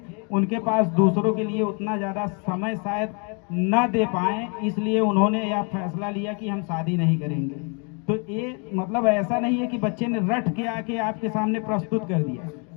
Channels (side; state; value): right; quieter; 36.2 dB